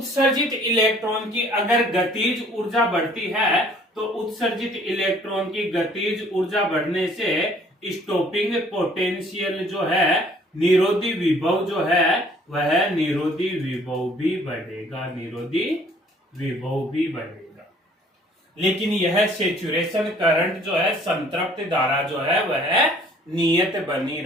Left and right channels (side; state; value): both; normal; correlation 0.57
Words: इलेक्ट्रॉन की अगर गतिज ऊर्जा बढ़ती है तो उत्सर्जित इलेक्ट्रॉन की गतिज ऊर्जा बढ़ने से स्टॉपिंग पोटेंशियल जो है, निरोधी विभव जो है वह निरोधी विभव भी बढ़ेगा, निरोधी विभव भी बढ़ेगा। लेकिन यह सेचुरेशन करंट जो है, संतृप्त धारा जो है वह नियत बनी